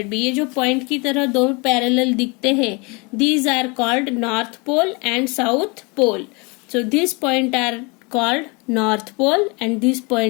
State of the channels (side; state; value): right; quieter; 29.3 dB